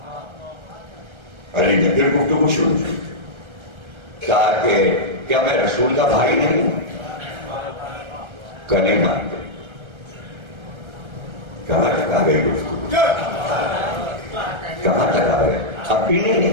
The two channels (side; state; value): left; late; 1.3 ms